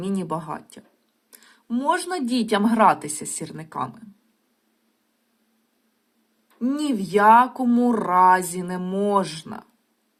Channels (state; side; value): identical; both; correlation 1.00